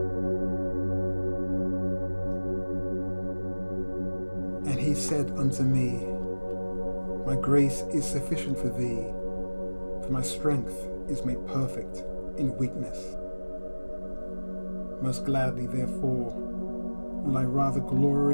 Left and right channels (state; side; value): inverted; both; correlation -1.00